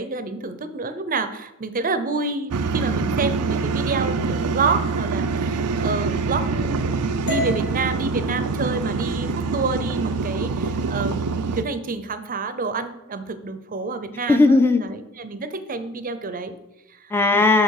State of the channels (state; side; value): normal; both; correlation 0.33